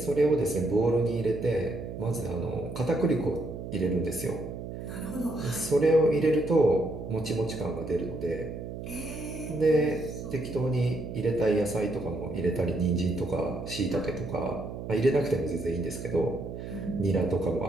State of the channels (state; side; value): noise; right; hum, 8 dB below the sound